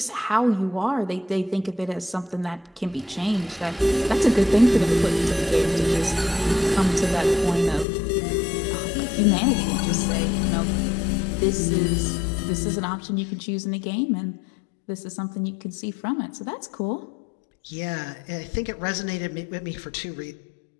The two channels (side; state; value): right; drops out; at 7.9 s